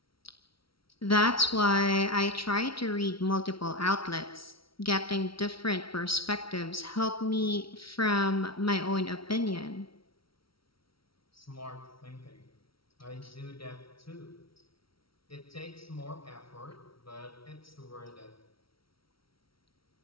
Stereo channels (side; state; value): right; late; 0.75 ms